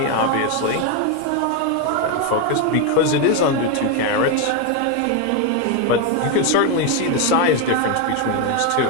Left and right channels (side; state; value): both; different; correlation 0.02